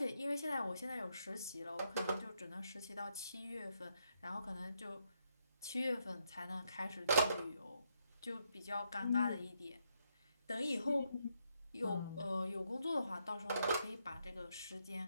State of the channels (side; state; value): both; inverted; correlation -0.78